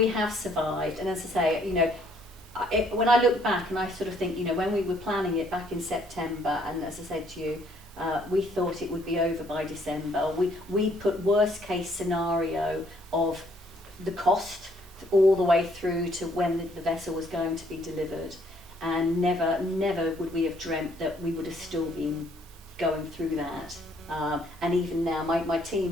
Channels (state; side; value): normal; both; correlation 0.66